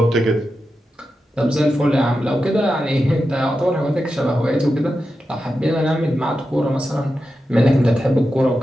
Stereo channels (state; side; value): normal; both; correlation 0.90